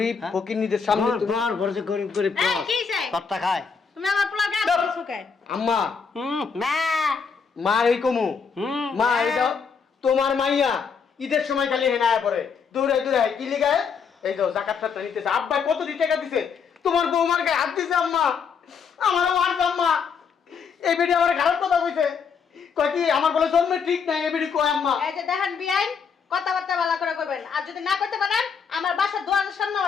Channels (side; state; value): right; quieter; 6.0 dB